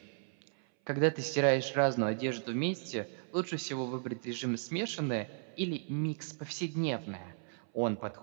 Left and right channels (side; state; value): left; silent; 54 dB below the other